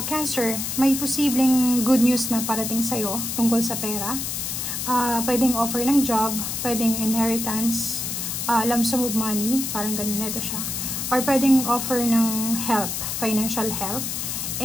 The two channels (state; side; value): noise; left; hiss, 3 dB below the sound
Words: Cancer, may posibleng good news na parating sa'yo tungkol sa pera. Pwedeng offer ng job, pwedeng inheritance, lump sum of money, parang ganun nito siya. Or pwedeng offer ng help, financial help.